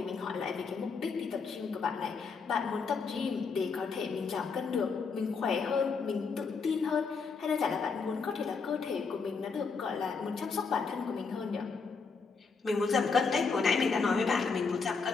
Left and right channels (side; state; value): right; quieter; 5.0 dB